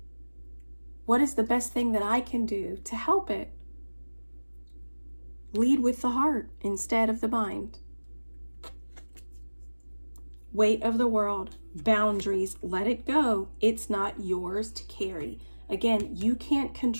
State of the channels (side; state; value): both; inverted; correlation -1.00